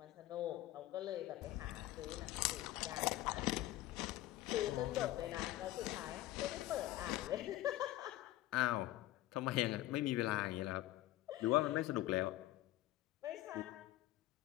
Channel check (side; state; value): right; quieter; 15.8 dB